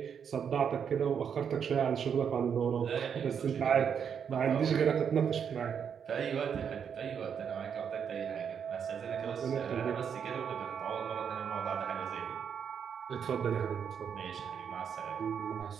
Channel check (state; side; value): quieter; left; 7.5 dB